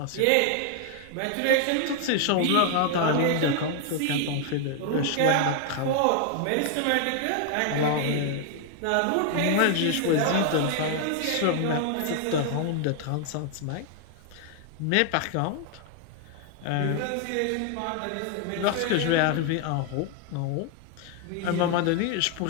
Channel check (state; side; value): different; both; correlation 0.00